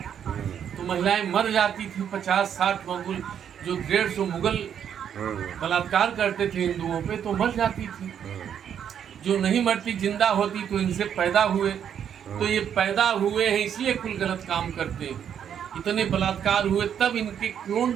तो महिलाएं मर जाती थी। 50-60 मुगल, जो 150 मुगल बलात्कार करते थे हिंदुओं पे, तो मर जाती थी। जो नहीं मरती, जिंदा होती, तो इनसे पैदा हुए। तो ये पैदा हुए हैं इसलिए कुल गलत काम करते हैं। इतने बलात्कार हुए, तब इनके क्लोन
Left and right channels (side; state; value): left; quieter; 8.8 dB